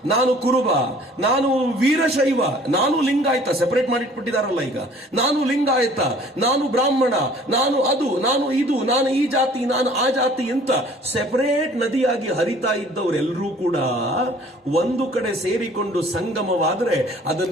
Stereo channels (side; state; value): both; normal; correlation 0.52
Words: ನಾನು ಕುರುಬ, ನಾನು ವೀರಶೈವ, ನಾನು ಲಿಂಗಾಯತ, ಸೆಪರೇಟ್ ಮಾಡಿಟ್ಬಿಟ್ಟಿದಾರಲ್ಲ ಈಗ. ನಾನು ಲಿಂಗಾಯತ, ನಾನು ಬ್ರಾಹ್ಮಣ, ನಾನು ಅದು, ನಾನು ಇದು, ನಾನು ಈ ಜಾತಿ, ನಾನು ಆ ಜಾತಿ ಅಂತ ಸೆಪರೇಟ್ ನದಿಯಾಗಿ ಹರಿತಾ ಇದ್ದವರೆಲ್ಲರೂ ಕೂಡ ಒಂದು ಕಡೆ ಸೇರಿಕೊಂಡು ಸಂಗಮವಾದ್ರೆ